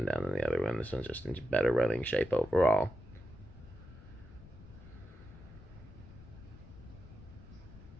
down than the other one. This one's just in better running shape overall.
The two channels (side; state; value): left; noise; rumble, 17 dB below the sound